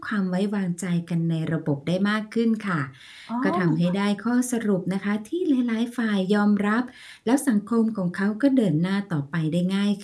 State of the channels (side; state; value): both; identical; correlation 1.00